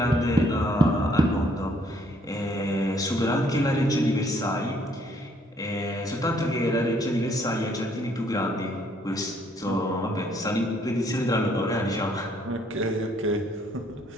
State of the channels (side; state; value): both; normal; correlation 0.66